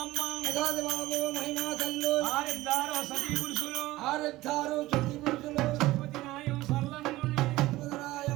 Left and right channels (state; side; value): quieter; left; 17.8 dB